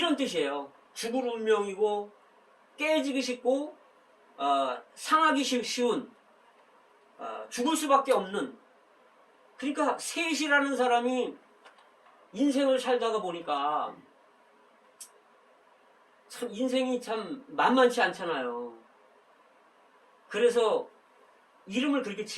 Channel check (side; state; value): both; identical; correlation 1.00